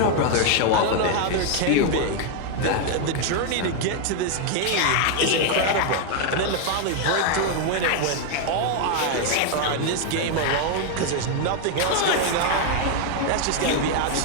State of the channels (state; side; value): different; both; correlation 0.01